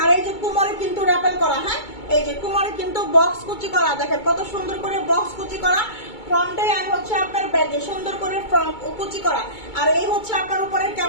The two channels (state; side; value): late; right; 2.2 ms